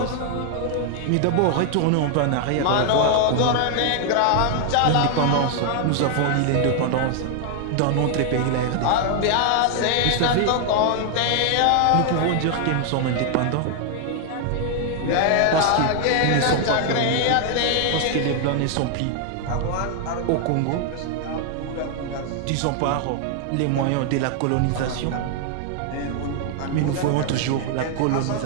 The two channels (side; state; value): both; different; correlation 0.00